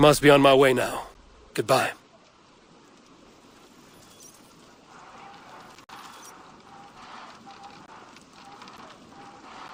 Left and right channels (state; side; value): identical; both; correlation 1.00